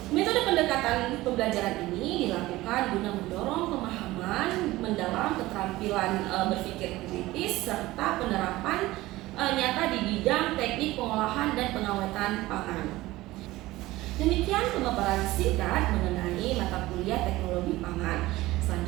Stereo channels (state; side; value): quieter; left; 18.1 dB